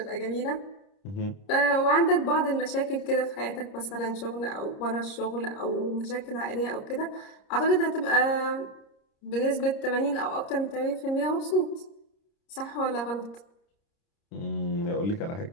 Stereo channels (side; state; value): right; late; 30 ms